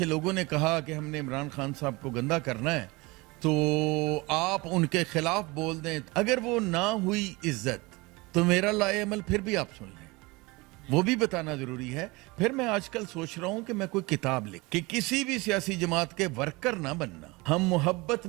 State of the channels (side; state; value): left; quieter; 24.2 dB